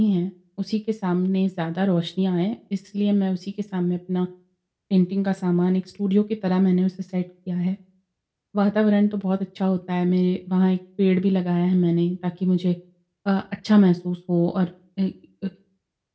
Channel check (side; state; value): both; identical; correlation 1.00